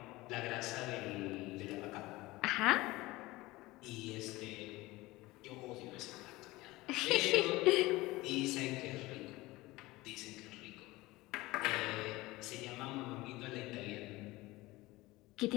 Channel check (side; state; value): right; quieter; 20.0 dB